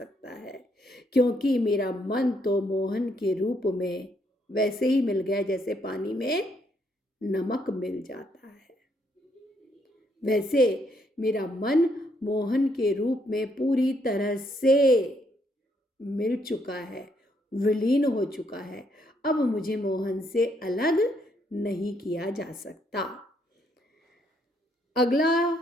है, क्योंकि मेरा मन तो मोहन के रूप में वैसे ही मिल गया जैसे पानी में नमक मिल जाता है। वैसे मेरा मन मोहन के रूप में पूरी तरह से मिल चुका है, विलीन हो चुका है, अब मुझे मोहन से अलग नहीं किया जा सकता। अगला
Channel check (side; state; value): both; normal; correlation 0.73